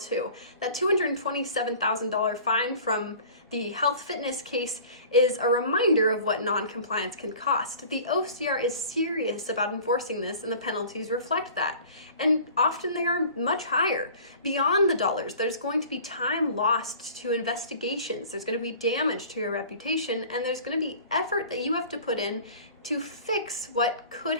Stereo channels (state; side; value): inverted; both; correlation -0.45